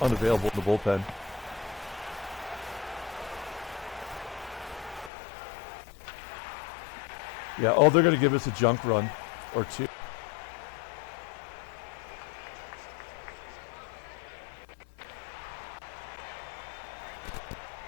in the bullpen. Yeah, oh, they're going to give us a junk run or 2.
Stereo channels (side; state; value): right; drops out; at 5.1 s